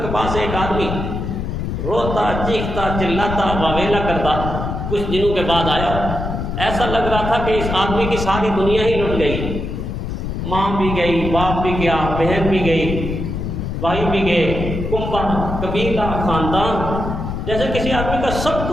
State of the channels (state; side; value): noise; left; rumble, 4 dB below the sound